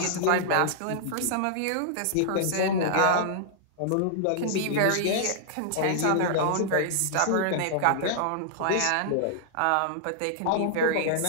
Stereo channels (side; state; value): both; different; correlation -0.01